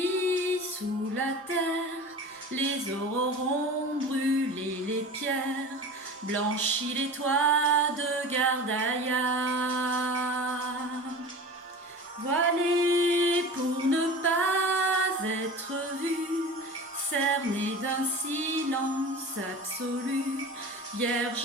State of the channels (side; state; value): both; normal; correlation 0.35